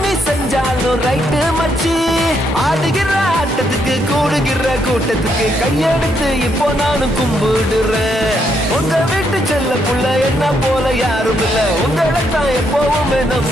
நீ செஞ்சாலும் ரைட்டு மச்சி ஆடுகிற ஆட்டத்துக்கு கூடுகிற கூட்டத்துக்கு கையெடுத்து இப்போ நானும் கும்பிடுறேன் உங்க வீட்டு செல்ல புள்ள என்ன போல யாரும் இல்ல உங்களைத்தான் எப்பவுமே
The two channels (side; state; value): both; normal; correlation 0.76